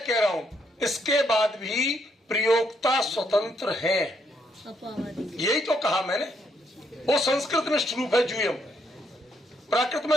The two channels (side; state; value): both; normal; correlation 0.74